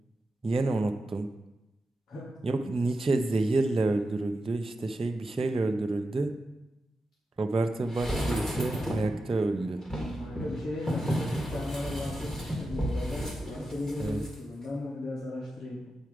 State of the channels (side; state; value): both; normal; correlation 0.90